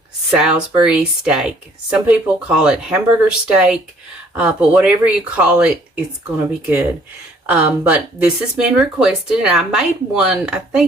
Salisbury steak. Some people call it hamburger steak, but whatever you call it, it's going to be good. But this has been requested, and I made one, I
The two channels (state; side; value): normal; both; correlation 0.60